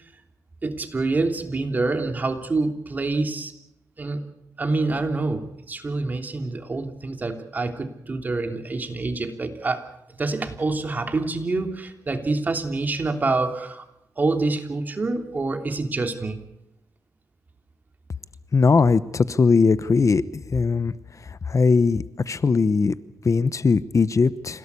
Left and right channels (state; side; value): normal; both; correlation 0.86